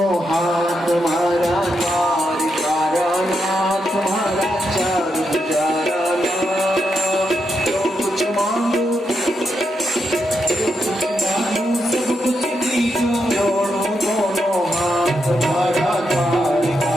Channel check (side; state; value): both; normal; correlation 0.83